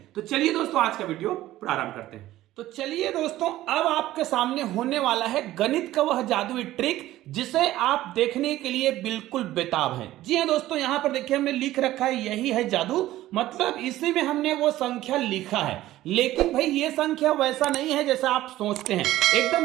तो चलिए दोस्तों, आज का वीडियो प्रारंभ करते हैं। तो चलिए दोस्तों, अब आपके सामने होने वाला है गणित का वह जादुई ट्रिक जिसे आप देखने के लिए बिल्कुल बेताब हैं। जी हाँ दोस्तों, यहां पर देखिए हमने लिख रखा है, यही है जादू, मतलब इसी में हमने वो संख्या लिखा है। लेकिन भाई ये संख्या वैसा नहीं है जैसा आप सोचते हैं,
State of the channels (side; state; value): left; quieter; 15.1 dB